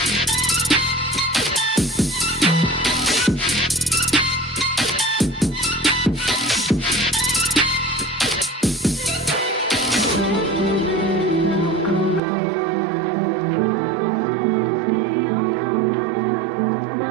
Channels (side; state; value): left; drops out; at 12.2 s